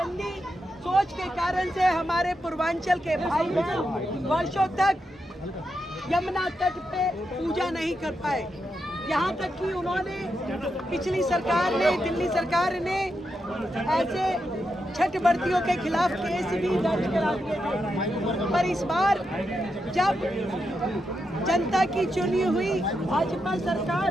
सोच के कारण से हमारे पूर्वांचल के भाई बहन वर्षों तक यमुना तट पे पूजा नहीं कर पाए। यहाँ तक कि उन्होंने पिछली सरकार ने, दिल्ली सरकार ने ऐसे छठ व्रतियों के खिलाफ केस भी दर्ज करा दिए थे। पर इस बार जब जनता की चुनी हुई भाजपा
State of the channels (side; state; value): both; normal; correlation 0.85